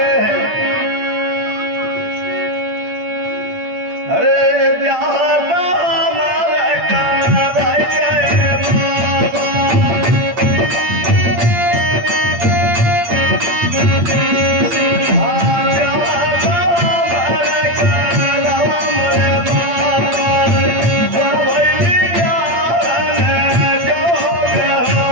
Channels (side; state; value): left; late; 8.7 ms